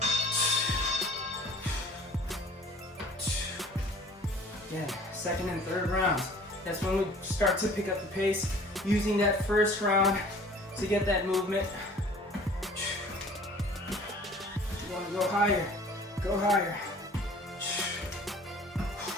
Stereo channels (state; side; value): normal; both; correlation 0.49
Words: Again, second and third rounds. That's when we start to pick up the pace, using that first round to get that movement. You want to go higher, go higher.